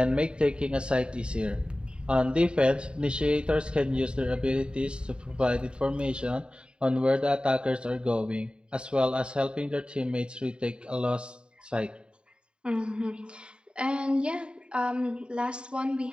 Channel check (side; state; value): left; late; 0.052 ms